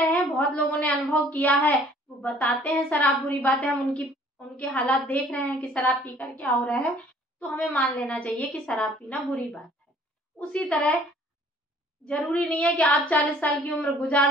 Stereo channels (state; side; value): normal; both; correlation 0.56